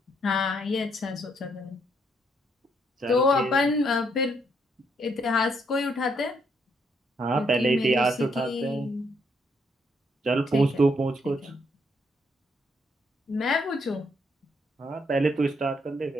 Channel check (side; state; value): both; normal; correlation 0.73